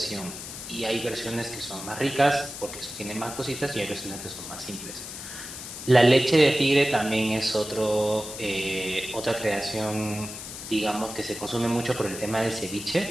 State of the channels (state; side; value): noise; left; hiss, 10 dB below the sound